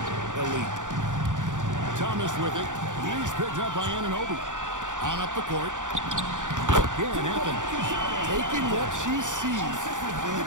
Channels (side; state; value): left; late; 0.86 ms